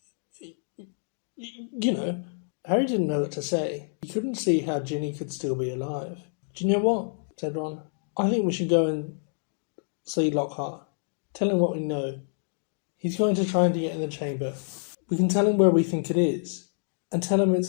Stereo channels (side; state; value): right; silent; digital silence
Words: You know, Harry didn't know what to say. He couldn't see how Ginny could still be alive. Do you know what? Said Ron. I think we should go and see Lockhart. Tell him what we know. He's going to try and get in the chamber. We can tell him where we think it is, and tell him